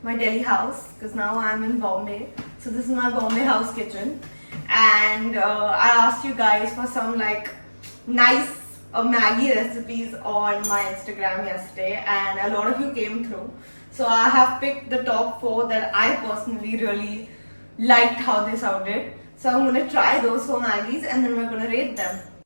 my Delhi house because now I'm in Bombay. So this is my Bombay house kitchen, and I asked you guys for some nice Maggi recipes on my Instagram yesterday, and a lot of you came through. So I have picked the top 4 that I personally really liked how they sounded. So I'm gonna try those 4 Maggies and then we're gonna rate them.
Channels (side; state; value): both; inverted; correlation -1.00